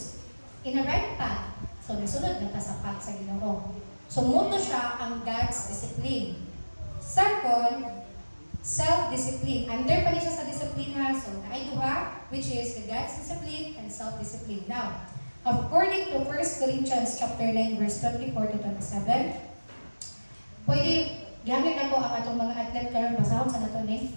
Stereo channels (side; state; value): both; inverted; correlation -1.00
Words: in a right path. So, nasunod na ta sa path sa Ginoo. So, muto siya ang God's discipline. Second, self-discipline. Under pa siya sa discipline ha. So, naay duha, which is the God's discipline and self-discipline. Now, according to 1 Corinthians chapter 9, verse 24 to 27, pwede, gamit ako ang atong mga athlete karon basahon sa nato ni.